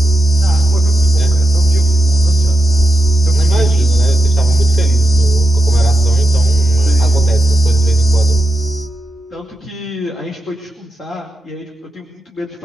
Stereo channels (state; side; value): normal; both; correlation 0.88